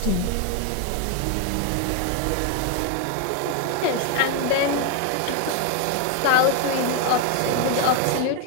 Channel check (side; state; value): both; different; correlation 0.01